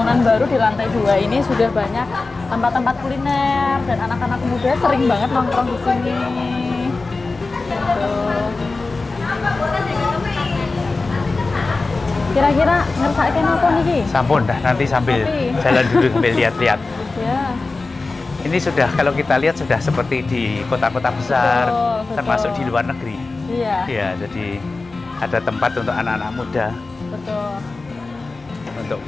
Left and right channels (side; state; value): right; quieter; 3.7 dB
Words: baru di lantai 2 ini sudah banyak tempat-tempat kuliner dan anak-anak muda sering banget nongkrong di sini. Tuh. Kira-kira ngersake napa niki? Sampun dah, nanti sambil Kopi. jalan dulu sambil lihat-lihat. Ya. Ini sudah kalau kita lihat sudah seperti di kota-kota besar, Betul. termasuk di luar negeri. Iya, Ya, jadi ada tempat untuk anak-anak muda betul. untuk